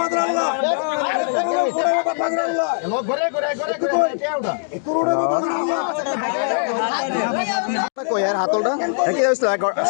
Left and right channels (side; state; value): right; silent; digital silence